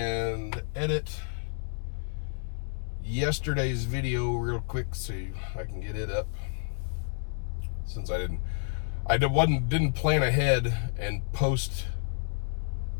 edit yesterday's video real quick so I can get it up, since I didn't plan ahead and post.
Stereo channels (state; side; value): silent; right; digital silence